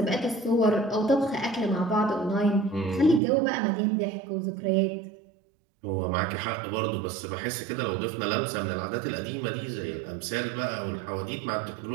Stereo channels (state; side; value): drops out; left; at 3.2 s